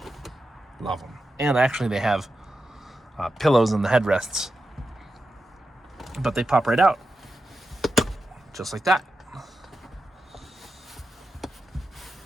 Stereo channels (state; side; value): normal; both; correlation 0.90